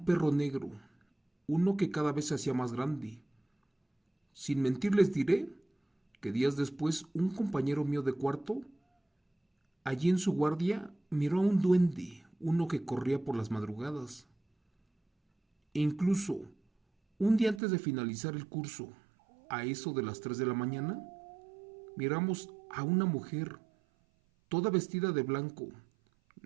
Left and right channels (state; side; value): drops out; left; at 17.6 s